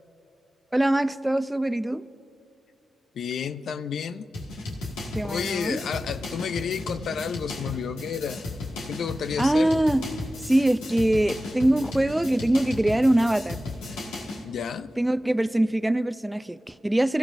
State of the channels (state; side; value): normal; both; correlation 0.94